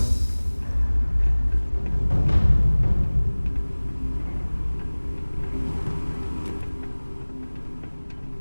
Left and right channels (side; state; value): both; inverted; correlation -1.00